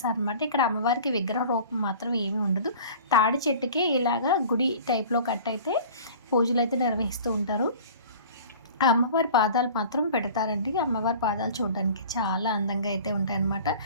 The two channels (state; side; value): inverted; both; correlation -0.43